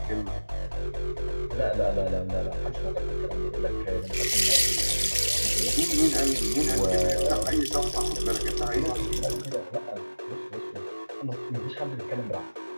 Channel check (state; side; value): inverted; both; correlation -1.00